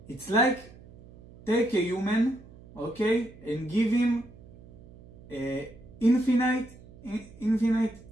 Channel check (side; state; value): right; noise; hum, 21 dB below the sound